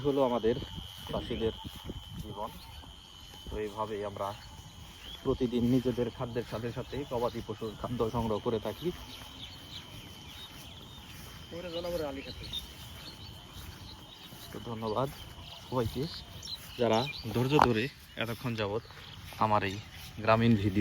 হলো আমাদের চাষিদের জীবন। তো এইভাবেই আমরা প্রতিদিন নিজেদের খাদ্যের সাথে সাথে গবাদি পশুর খাদ্য সংগ্রহ করে থাকি। তো ধন্যবাদ সবাইকে যারা ধৈর্য ধরে এতক্ষণ যাবৎ আমার এই গ্রামীণ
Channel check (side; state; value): both; identical; correlation 1.00